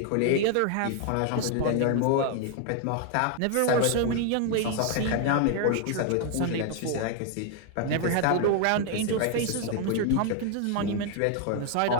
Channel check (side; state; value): both; different; correlation 0.00